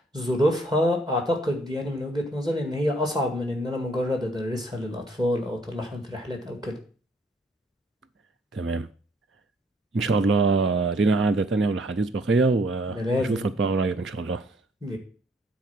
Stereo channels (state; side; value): normal; both; correlation 0.64